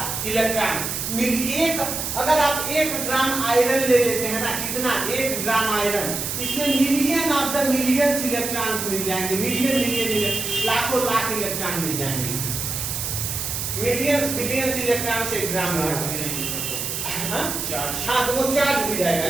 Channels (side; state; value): right; noise; hiss, 3 dB below the sound